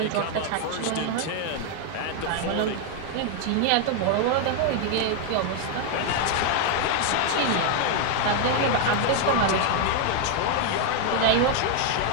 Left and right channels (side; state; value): both; different; correlation 0.00